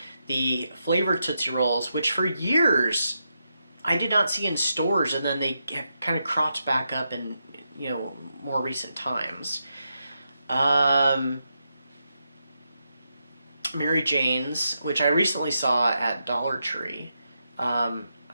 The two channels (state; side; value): inverted; both; correlation -0.84